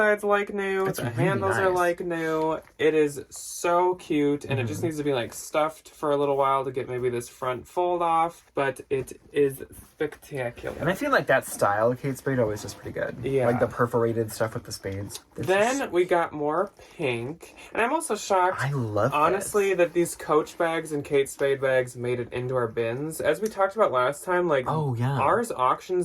like, new. The handles are, like, new. It is so cute. And it just needs to be, like, stuffed for a little while to get maybe this front fold off. But it is spectacular. And I feel like that style of Kate Spade always is pretty good. Yeah. Like the perforated stuff with the spades. Then we got more pink. And I'm also shocked, I love honestly, that these Coach bags and Kate Spade bags made it into our bins. As we talked about last time, like, ours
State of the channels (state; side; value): identical; both; correlation 1.00